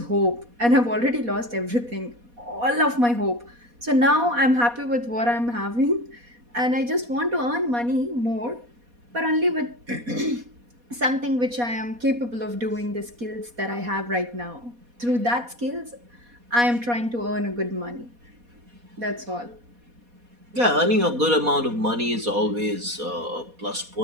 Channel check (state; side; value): late; left; 4.2 ms